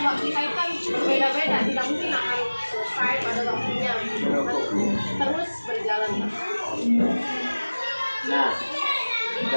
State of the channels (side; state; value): both; inverted; correlation -1.00